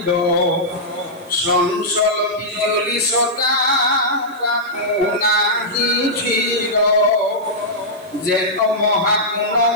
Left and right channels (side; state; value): right; noise; hiss, 27 dB below the sound